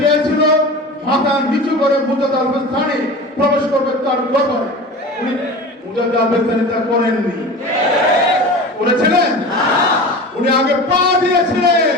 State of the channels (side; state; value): both; normal; correlation 0.34